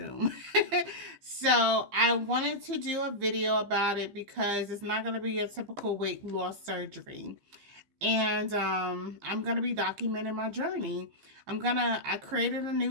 So I wanted to do a video about it because it's not going to be a typical weight loss surgery. And I'm going to be documenting my journey. I created a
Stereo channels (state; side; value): late; left; 15 ms